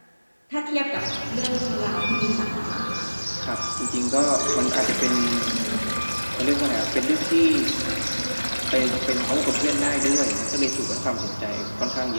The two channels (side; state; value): both; inverted; correlation -1.00